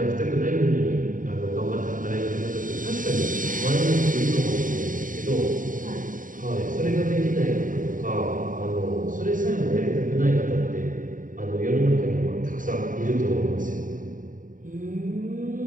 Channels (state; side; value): late; left; 0.39 ms